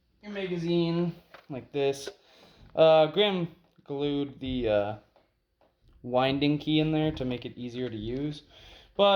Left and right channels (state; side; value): identical; both; correlation 1.00